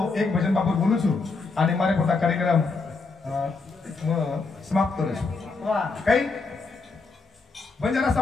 एक भजन बापूर बोलू छु आणि मारे पोता कार्यक्रम समाप्त करू काही बंजारा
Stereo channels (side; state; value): right; quieter; 4.1 dB